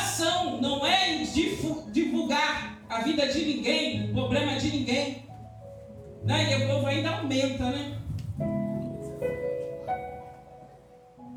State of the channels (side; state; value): both; identical; correlation 1.00